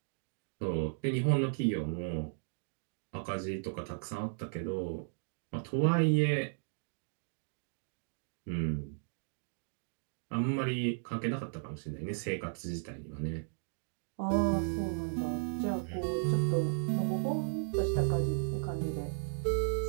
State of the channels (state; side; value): silent; left; digital silence